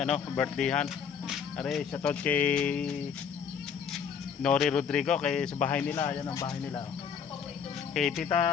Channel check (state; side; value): quieter; right; 7.1 dB